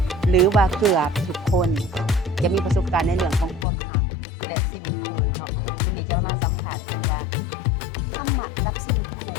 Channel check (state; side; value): drops out; right; at 3.7 s